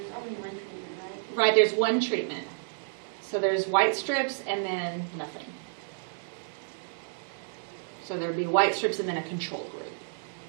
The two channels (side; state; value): left; silent; digital silence